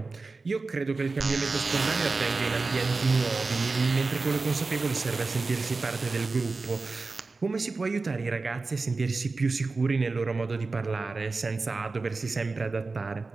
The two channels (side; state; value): left; quieter; 3.9 dB